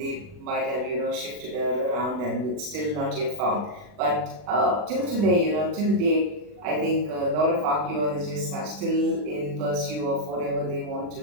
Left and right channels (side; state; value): left; late; 40 ms